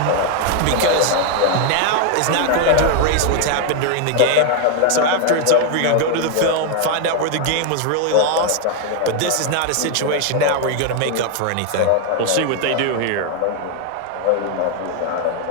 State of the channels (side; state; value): both; different; correlation 0.01